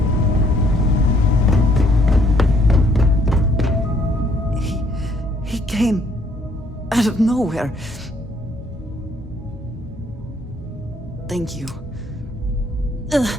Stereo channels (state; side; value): normal; both; correlation 0.66